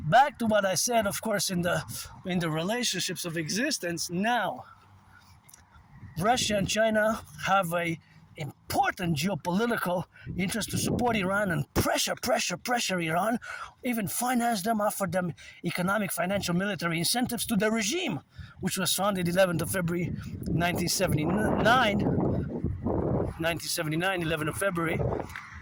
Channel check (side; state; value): both; identical; correlation 1.00